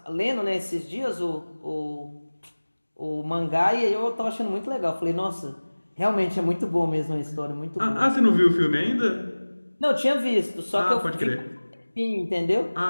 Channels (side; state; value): both; inverted; correlation -1.00